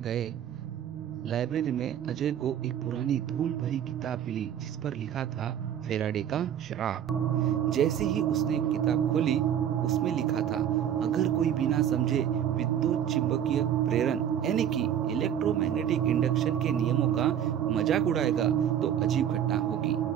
गए। लाइब्रेरी में अजय को एक पुरानी धूल भरी किताब मिली जिस पर लिखा था फेराडे का श्राप। जैसे ही उसने किताब खोली, उसमें लिखा था, अगर कोई बिना समझे विद्युत चुंबकीय प्रेरण यानी कि इलेक्ट्रोमैग्नेटिक इंडक्शन के नियमों का मजाक उड़ाएगा तो अजीब घटना होगी।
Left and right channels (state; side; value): quieter; left; 9.8 dB